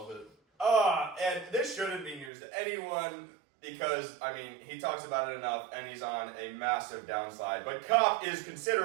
it. And this shouldn't be news to anyone because, I mean, he talks about it enough and he's on a massive downside. But Kopp is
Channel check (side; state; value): left; drops out; at 2.3 s